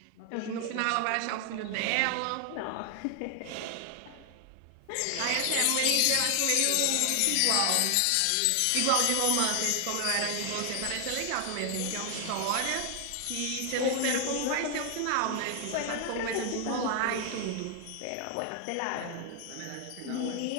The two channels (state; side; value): different; both; correlation 0.00